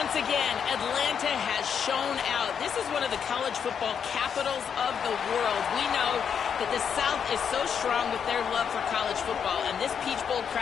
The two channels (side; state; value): right; quieter; 7.4 dB